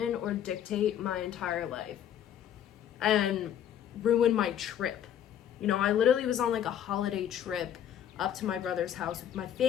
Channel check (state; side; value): quieter; right; 10.0 dB